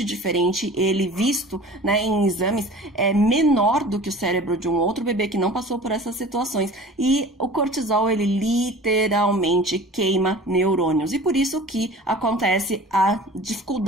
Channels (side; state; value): both; normal; correlation 0.41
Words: diferente, ele visto, né, em exames é menor do que o cérebro de um outro bebê que não passou por essas situações e o cortisol ele literalmente queima neurônios e por isso que acontece a